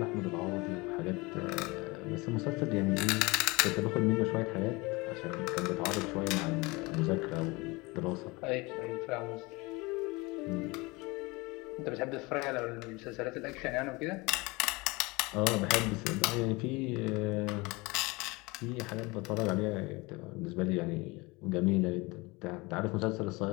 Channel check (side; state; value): right; quieter; 24.7 dB